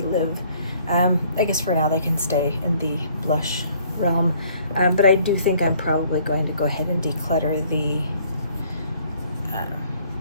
live, I guess for now they can stay in the blush realm, but I do think I'm probably going to go ahead and declutter the,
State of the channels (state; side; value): inverted; both; correlation -0.60